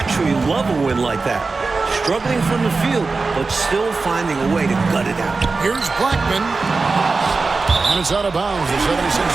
love a win like that. Struggling from the field, but still finding a way to gut it out. Here's Blackman. And it's out of bounds. The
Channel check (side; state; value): left; quieter; 4.0 dB